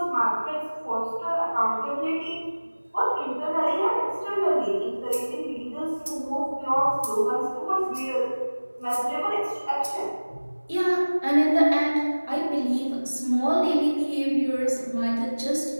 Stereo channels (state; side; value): inverted; both; correlation -1.00